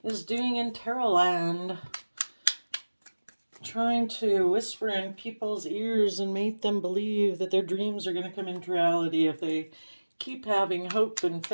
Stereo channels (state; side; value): inverted; both; correlation -1.00